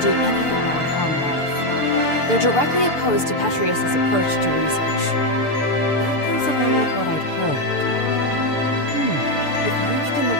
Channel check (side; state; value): right; late; 6.8 ms